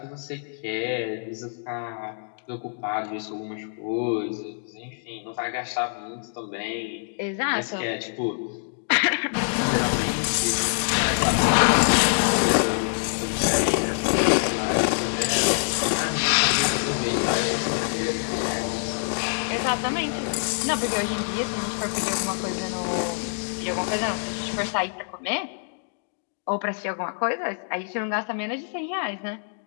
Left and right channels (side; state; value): right; silent; digital silence